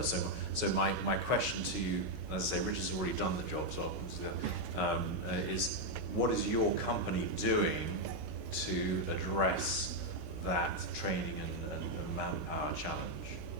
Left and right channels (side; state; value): left; late; 17 ms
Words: So my question to you, as I say, Richard's already done the job, so is what is your company doing to address that training and manpower challenge?